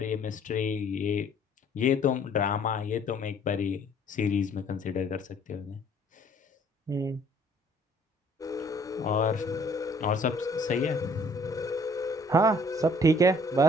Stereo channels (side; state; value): both; normal; correlation 0.58